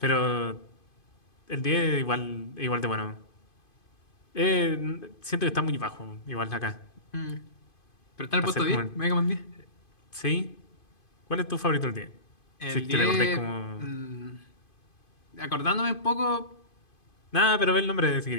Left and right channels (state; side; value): late; right; 2.5 ms